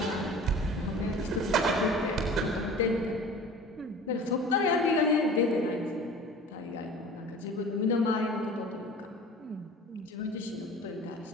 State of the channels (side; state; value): both; normal; correlation 0.41